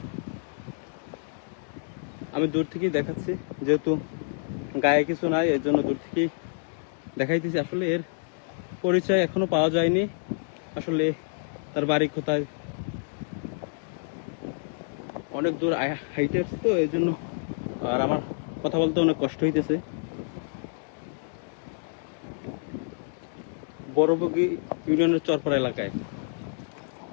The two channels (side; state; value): right; silent; digital silence